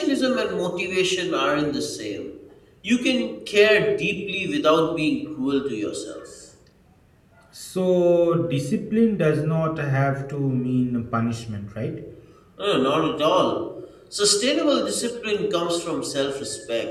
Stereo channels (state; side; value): identical; both; correlation 1.00